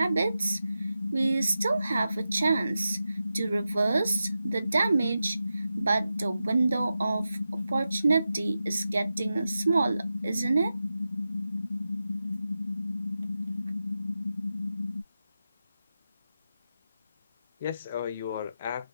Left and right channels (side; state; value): both; inverted; correlation -0.91